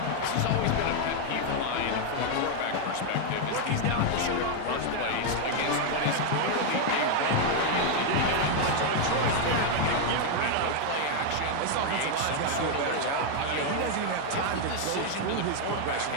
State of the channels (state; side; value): different; both; correlation 0.00